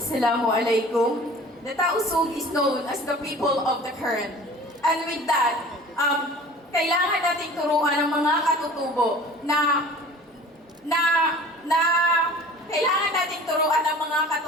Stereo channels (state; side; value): normal; both; correlation 0.44